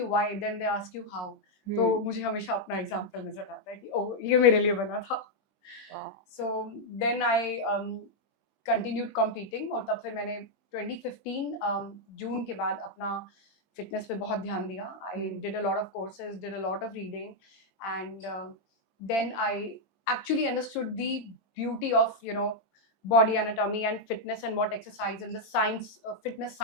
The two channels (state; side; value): late; right; 20 ms